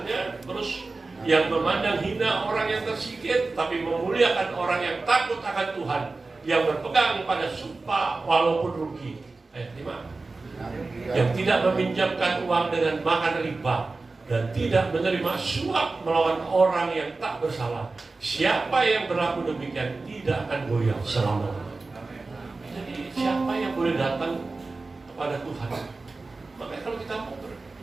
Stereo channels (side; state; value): left; quieter; 3.6 dB